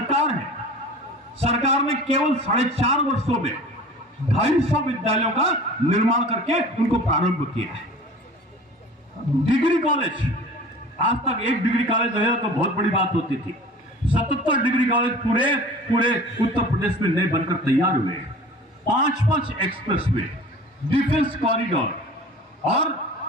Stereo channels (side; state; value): both; normal; correlation 0.42